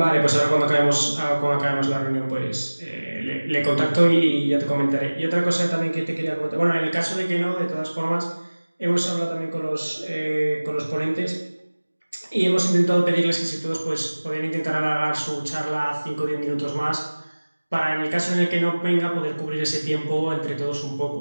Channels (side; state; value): both; inverted; correlation -1.00